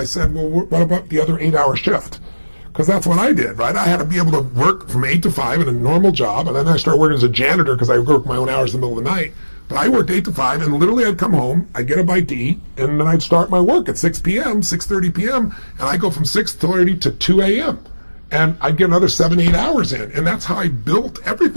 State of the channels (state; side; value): inverted; both; correlation -1.00